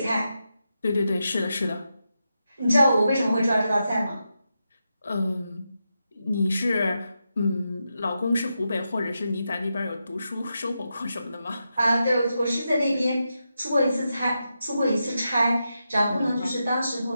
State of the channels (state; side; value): inverted; both; correlation -0.87